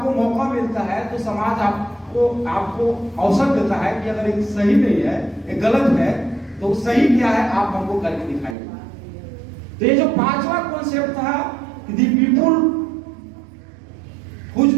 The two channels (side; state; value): left; drops out; at 8.6 s